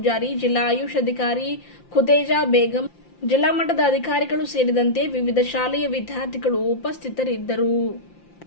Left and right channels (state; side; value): late; right; 5.8 ms